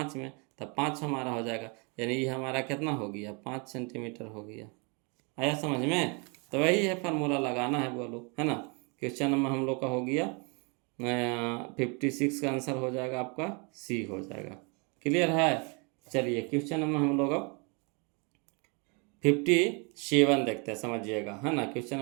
में, तो 5 हमारा हो जाएगा, यानी ये हमारा कितना हो गया 5 सेंटीमीटर हो गया। आया समझ में। तो वही है फार्मूला लगाना है बोलो, है ना। क्वेश्चन नंबर हम लोग का हो गया 56 का आंसर हो जाएगा आपका सी हो जाएगा। क्लियर है। चलिए क्वेश्चन नंबर हम लोग अब 57 देखते हैं, समझिएगा, है ना। क्वेश्चन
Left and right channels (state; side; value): quieter; left; 32.8 dB